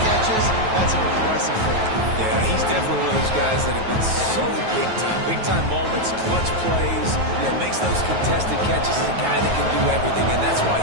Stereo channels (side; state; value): left; late; 9.3 ms